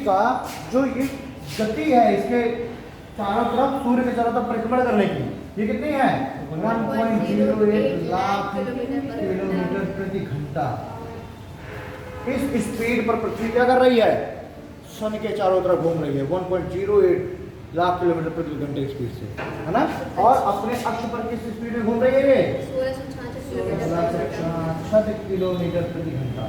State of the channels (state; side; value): identical; both; correlation 1.00